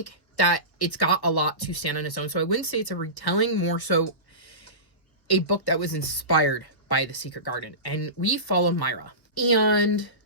that it's got a lot to stand on its own. So I wouldn't say it's a retelling, more so a book that was inspired by the Secret Garden. And we follow Myra. And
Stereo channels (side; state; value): right; late; 1.3 ms